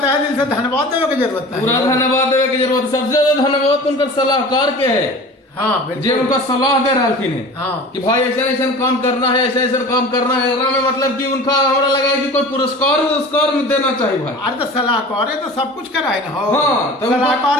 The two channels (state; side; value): normal; both; correlation 0.39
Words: दिल से धन्यवाद देने की जरूरत है। पूरा धन्यवाद देवे की जरूरत। सबसे ज्यादा धन्यवाद उनका सलाहकार के है, हाँ जे बिल्कुल। उनका सलाह दे रहा थी हाँ कि भाई ऐसा ऐसा काम करना है, ऐसा ऐसा काम करना है। एकरा में मतलब कि उनका हमरा लगा कि कोई पुरस्कार में देना चाहिए भाई। अरे तो सलाहकार है तो सब कुछ कराए ना हो। हाँ, तो